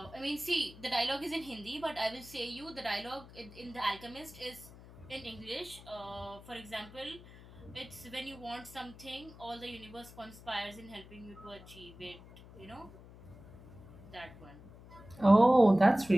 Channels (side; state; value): left; noise; hum, 19 dB below the sound